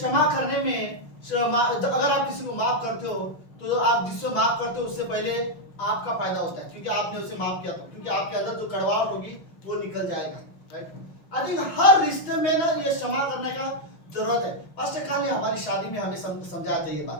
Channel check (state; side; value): late; right; 6.0 ms